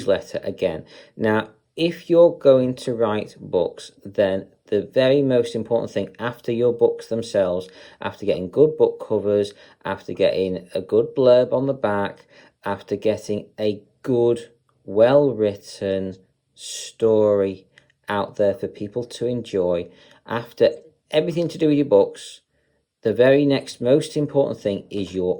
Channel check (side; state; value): both; identical; correlation 1.00